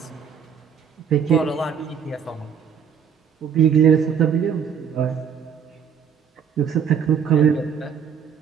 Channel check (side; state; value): left; quieter; 7.4 dB